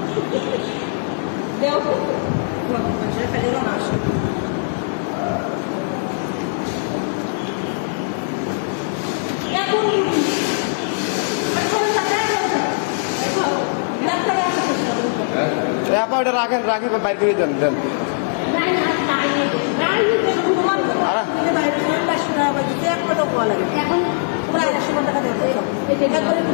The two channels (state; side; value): silent; right; digital silence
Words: আপা এটা রাখেন, রাখি বাইর করে দেন দেন।